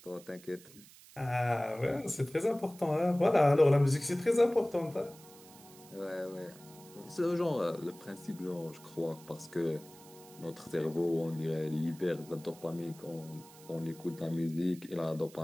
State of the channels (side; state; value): right; noise; hiss, 21 dB below the sound